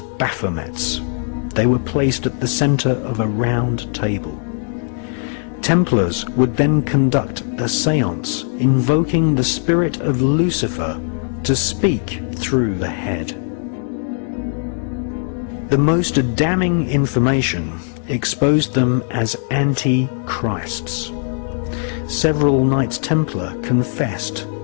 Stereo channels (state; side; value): silent; right; 57 dB below the other